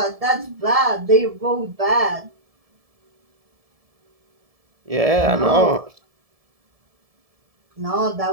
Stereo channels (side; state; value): left; late; 1.7 ms